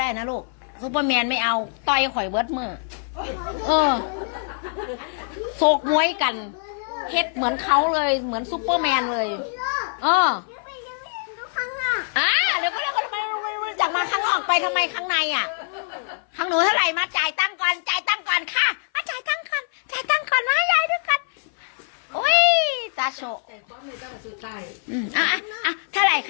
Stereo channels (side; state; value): right; silent; 58 dB below the other